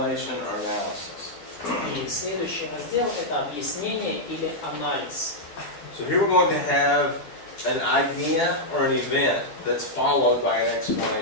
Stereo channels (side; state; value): right; late; 12 ms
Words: or analysis. И следующий раздел – это объяснение или анализ. So here we're going to have an idea or an event that's followed by an